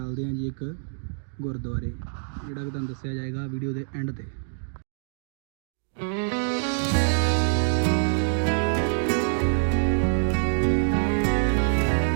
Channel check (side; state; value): left; silent; digital silence